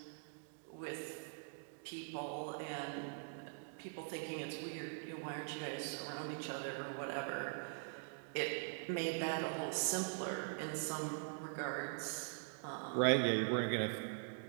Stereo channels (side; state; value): left; silent; digital silence